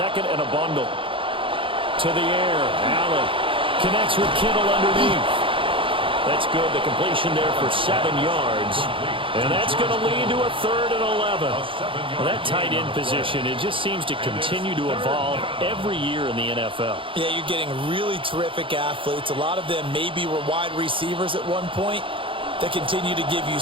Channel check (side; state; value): left; late; 0.25 ms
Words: and a bundle. To the air, Allen connects with Kittle underneath. That's good. The completion there for 7 yards. And that's going to lead to a 3rd and 11. Well, that tight end position, it just seems to continue to evolve every year in the NFL. Yeah, you're getting really terrific athletes. A lot of them maybe were wide receivers at one point that continue to give